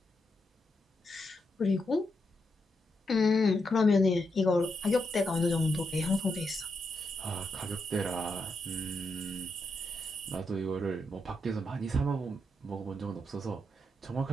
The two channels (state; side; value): normal; both; correlation 0.83